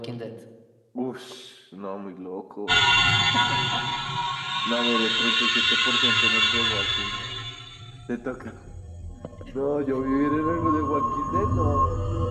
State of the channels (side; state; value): both; identical; correlation 1.00